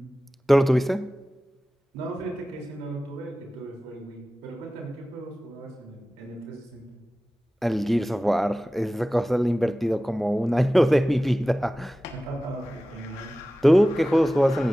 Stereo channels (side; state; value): both; normal; correlation 0.96